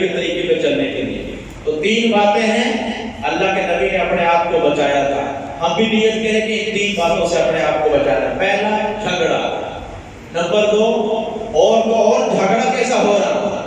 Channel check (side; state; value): both; identical; correlation 1.00